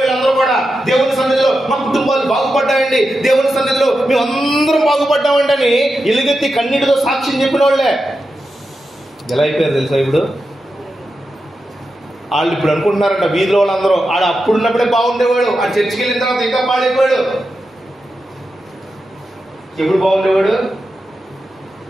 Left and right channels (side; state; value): both; normal; correlation 0.89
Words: వీళ్ళందరూ కూడా దేవుని సన్నిధిలో మా కుటుంబాలు బాగుపడ్డాయండి, దేవుని సన్నిధిలో మేము అందరం బాగుపడ్డామండి అని ఎలుగెత్తి కన్నీటితో సాక్ష్యం చెప్పిన వాళ్ళే ఎలా అయిపోయారు తెలుసా? ఇప్పుడు వాళ్ళు ఇప్పుడు అనుకుంటున్నారంట వీధిలో వాళ్ళందరూ ఆడ అప్పుడున్నప్పుడే బాగుండేవాడు, ఆ చర్చికి వెళ్ళిన తర్వాత ఇంకా పాడైపోయాడు. ఎప్పుడు బాగుండేవాడు?